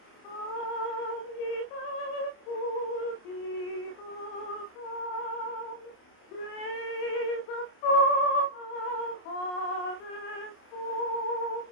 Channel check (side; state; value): right; late; 28 ms